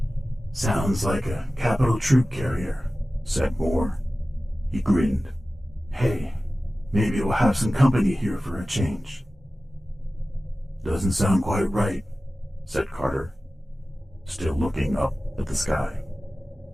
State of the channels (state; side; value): normal; both; correlation 0.96